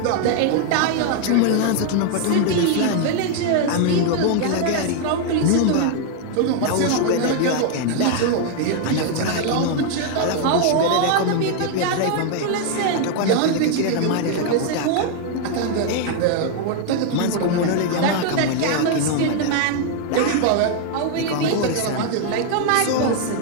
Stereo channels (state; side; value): different; both; correlation 0.00